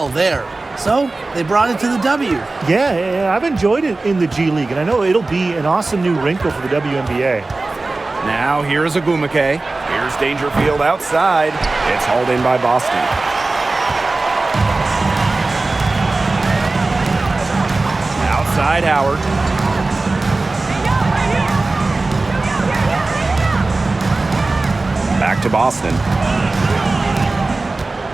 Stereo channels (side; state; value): left; quieter; 3.3 dB